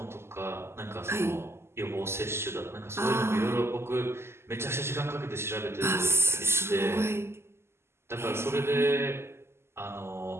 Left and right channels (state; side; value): late; left; 0.12 ms